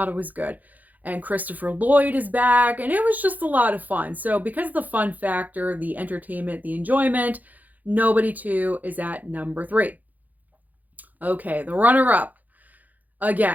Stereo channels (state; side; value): late; left; 0.081 ms